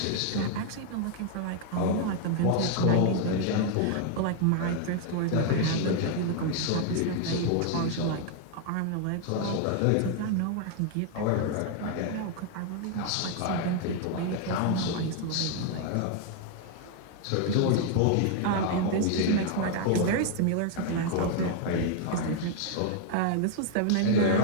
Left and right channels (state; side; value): different; both; correlation 0.00